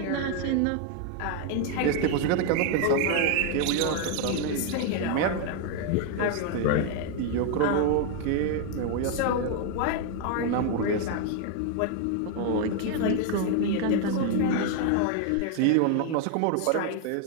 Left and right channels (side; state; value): both; different; correlation 0.00